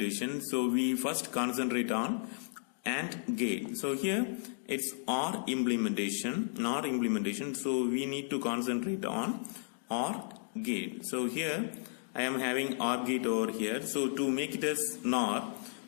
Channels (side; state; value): right; silent; digital silence